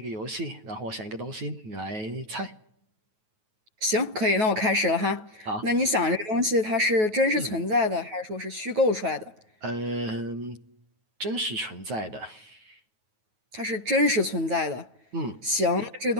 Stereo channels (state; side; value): late; left; 9.3 ms